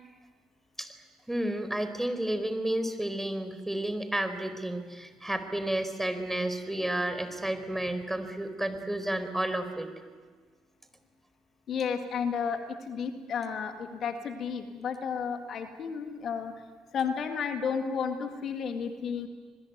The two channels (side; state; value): both; normal; correlation 0.83